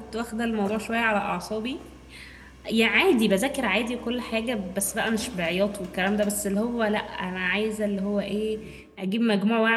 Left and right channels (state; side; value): identical; both; correlation 1.00